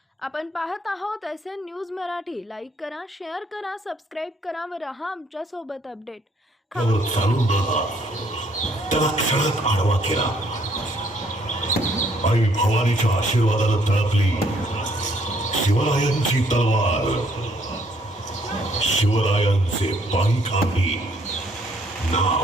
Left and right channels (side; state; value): both; normal; correlation 0.66